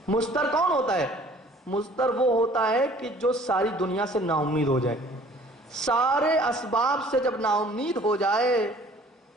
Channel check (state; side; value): normal; both; correlation 0.53